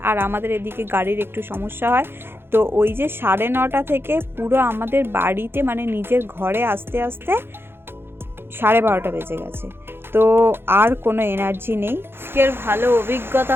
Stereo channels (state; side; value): late; left; 0.11 ms